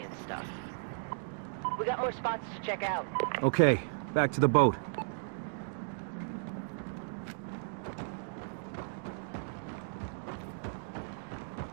stuff. We got more spots to check out. Okay, back to the boat.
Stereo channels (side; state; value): left; silent; digital silence